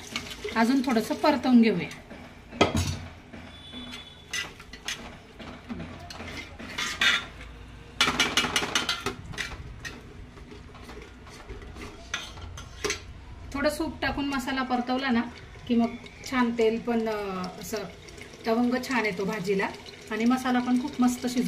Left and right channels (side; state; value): both; identical; correlation 1.00